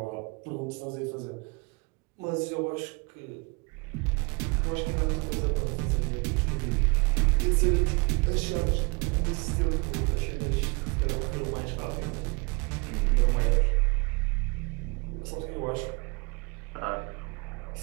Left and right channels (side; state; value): left; quieter; 29.6 dB